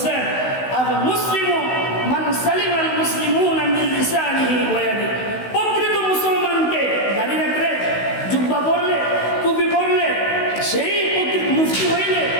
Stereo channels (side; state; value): right; late; 16 ms